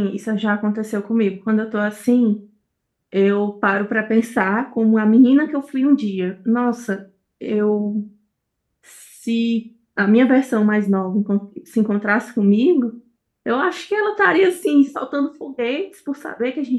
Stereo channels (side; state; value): both; identical; correlation 1.00